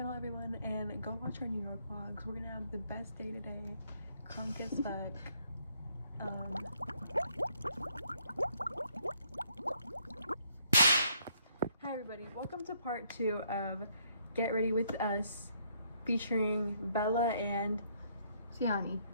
everyone, and go watch our New York vlogs. We're gonna have the best day today. Crunk as fuck. Hi everybody, welcome to part 2 of Get Ready With Us featuring Bella and Siani.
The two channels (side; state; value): both; inverted; correlation -0.69